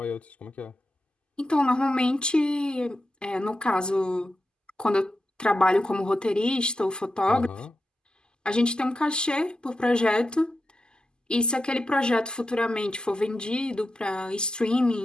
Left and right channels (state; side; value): normal; both; correlation 0.89